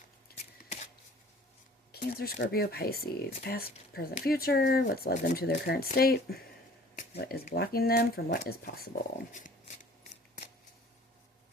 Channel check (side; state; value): both; normal; correlation 0.50